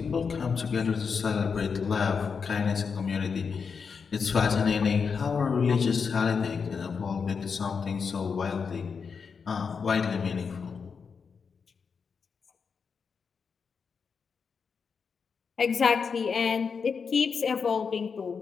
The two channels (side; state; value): right; quieter; 5.8 dB